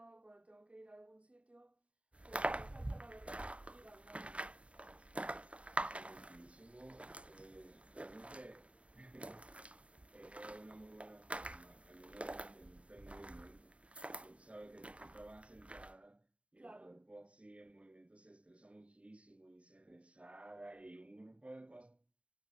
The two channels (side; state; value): left; late; 0.062 ms